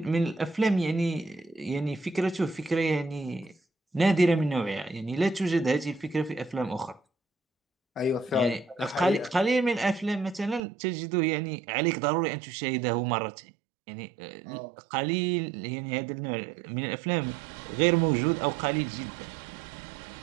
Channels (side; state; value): left; drops out; at 10.6 s